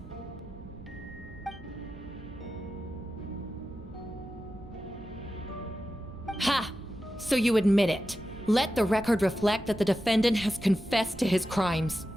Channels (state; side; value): noise; right; rumble, 17 dB below the sound